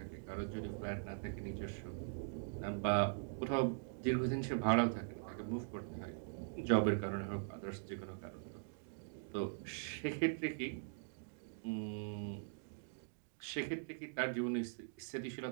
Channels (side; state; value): left; silent; digital silence